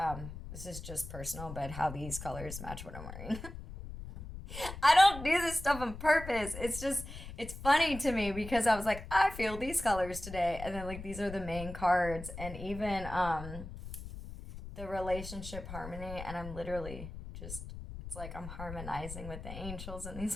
this is just personal, but how these colors match what I'm wearing. I don't do this stuff on purpose. It's just, it's funny to me because I was like, I feel these colors today. And then like, these are the main cards. And even the relationship harmony. And I'm literally just, it's like I'm harmonizing with the angels and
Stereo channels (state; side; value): noise; left; rumble, 10 dB below the sound